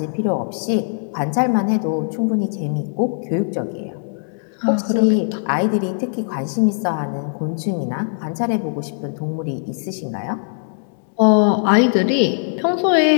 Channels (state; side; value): silent; right; digital silence